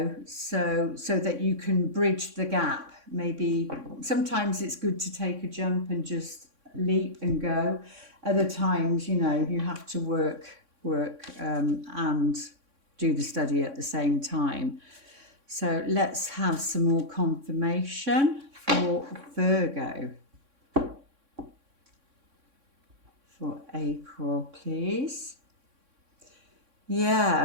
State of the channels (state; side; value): late; left; 3.6 ms